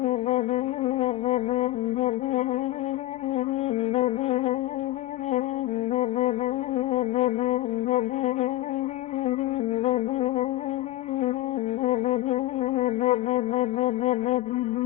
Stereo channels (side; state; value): right; quieter; 16.0 dB